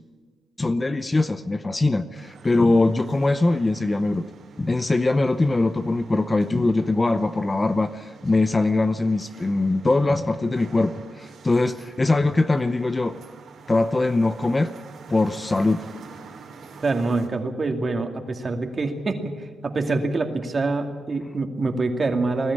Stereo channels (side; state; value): both; normal; correlation 0.95